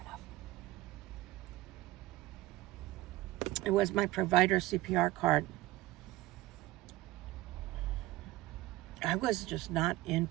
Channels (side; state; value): left; quieter; 18.0 dB